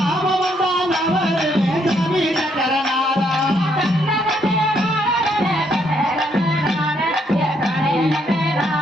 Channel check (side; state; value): both; normal; correlation 0.72